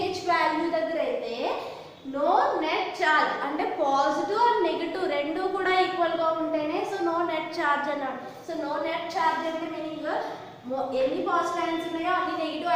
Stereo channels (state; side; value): identical; both; correlation 1.00